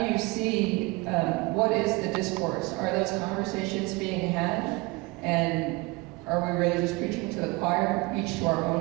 you see, what is the discourse? Are those conversations being had? And are we really just preaching to the choir, each to our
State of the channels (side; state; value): left; quieter; 24.0 dB